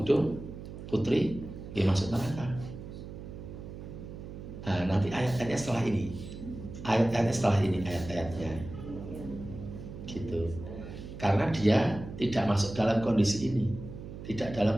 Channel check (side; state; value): right; noise; hum, 11 dB below the sound